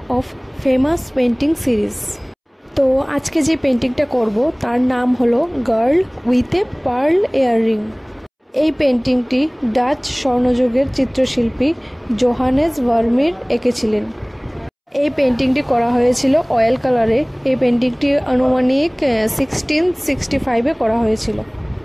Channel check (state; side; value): identical; both; correlation 1.00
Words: of famous painting series. তো আজকে যে পেন্টিংটা করব তার নাম হলো girl with a pearl earring. এই পেন্টিংটি ডাচ স্বর্ণযুগের চিত্রশিল্পী জোহানেস ভার্মির এঁকেছিলেন। এই পেন্টিংটি করা হয়েছিল অয়েল কালারে। এই পেন্টিংটি আনুমানিক 1665-এ করা হয়েছিল।